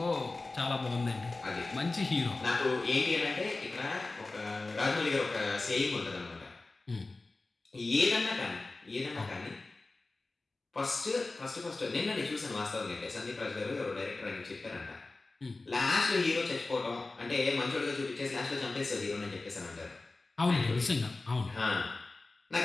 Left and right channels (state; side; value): quieter; right; 3.4 dB